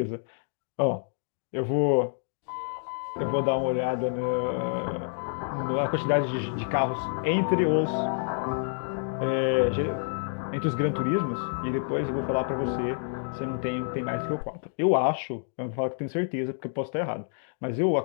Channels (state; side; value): silent; right; digital silence